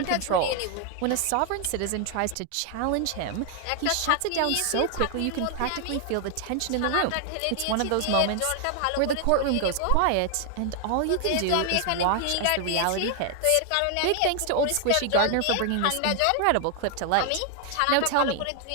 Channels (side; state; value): both; different; correlation 0.00